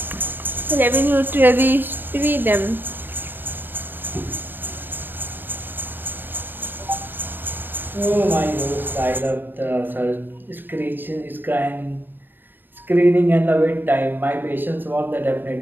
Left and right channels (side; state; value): left; late; 0.094 ms